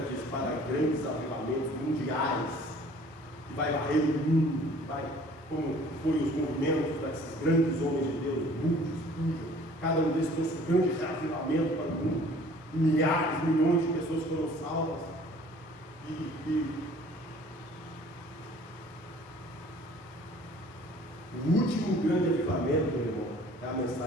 diz para grandes avivamentos mundiais, que vai varrer o mundo, vai, como foi os movimentos desses grandes homens de Deus, muitos, cada um desses trouxe um grande avivamento para o mundo, milhares, milhões de pessoas foram salvas, o último grande avivamento, meu irmão, é a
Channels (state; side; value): normal; both; correlation 0.52